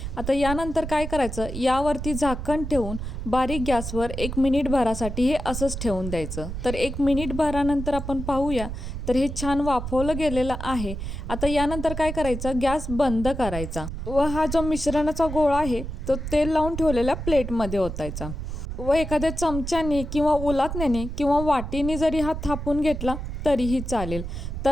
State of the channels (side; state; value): right; noise; rumble, 6 dB below the sound